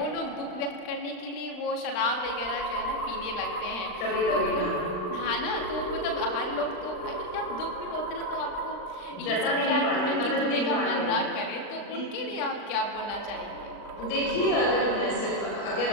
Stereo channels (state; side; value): late; right; 39 ms